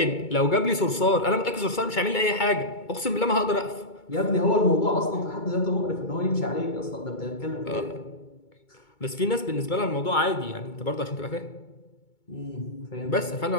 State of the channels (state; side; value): late; right; 2.2 ms